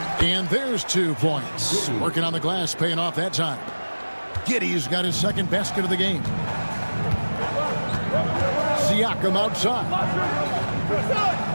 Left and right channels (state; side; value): inverted; both; correlation -1.00